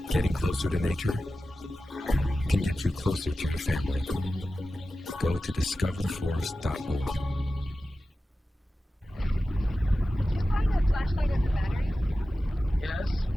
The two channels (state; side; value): normal; both; correlation 0.94